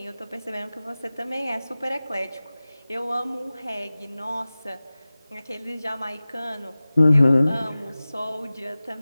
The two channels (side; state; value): both; inverted; correlation -0.97